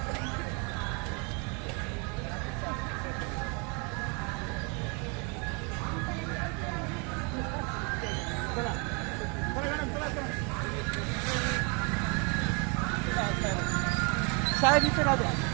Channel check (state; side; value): quieter; left; 33.6 dB